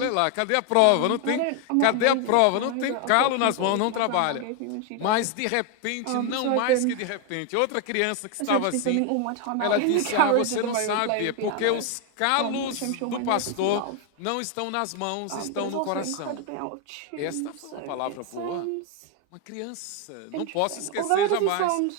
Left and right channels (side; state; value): both; different; correlation 0.01